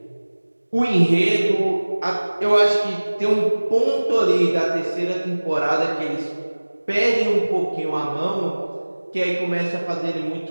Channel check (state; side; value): inverted; both; correlation -1.00